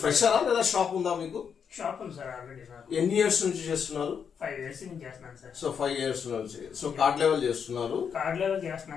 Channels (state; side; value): quieter; right; 7.0 dB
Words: ఫ్రెషరా లేదా షాప్ ఉందా మీకు? షాప్ ఉంది సార్ ఆల్రెడీ. ఎన్ని ఇయర్స్ నుంచి చేస్తున్నారు? 5 years నుంచి చేస్తున్నాను సార్. సో 5 years నుంచి. సో కార్డ్ లెవెల్ చేస్తున్నారు? కార్డ్ లెవెల్